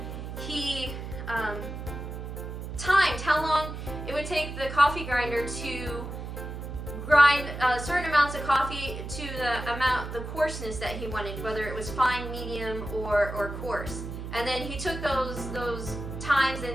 He timed how long it would take the coffee grinder to grind certain amounts of coffee to the coarseness that he wanted, whether it was fine, medium, or coarse. And then he took those times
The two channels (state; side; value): noise; right; hum, 8 dB below the sound